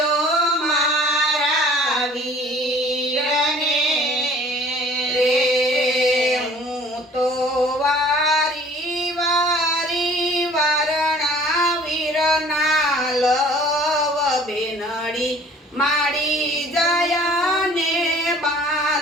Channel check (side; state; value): both; normal; correlation 0.51